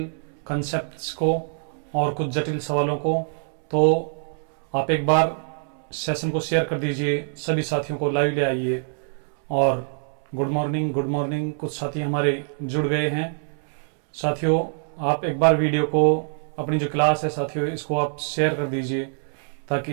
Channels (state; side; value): silent; left; 62 dB below the other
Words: कंसेप्ट्स को और कुछ जटिल सवालों को। तो आप एक बार सेशन को शेयर कर दीजिए, सभी साथियों को लाइव ले आइए। और गुड मॉर्निंग, कुछ साथी हमारे जुड़ गए हैं। साथियों, आप एक बार वीडियो को, अपनी जो क्लास है साथियों, इसको आप शेयर कर दीजिए ताकि